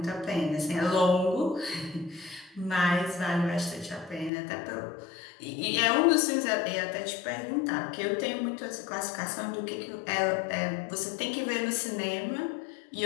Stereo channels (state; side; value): drops out; right; at 4.3 s